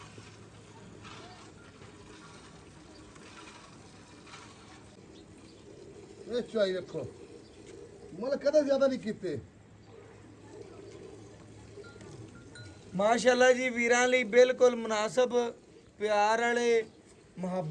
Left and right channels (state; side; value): identical; both; correlation 1.00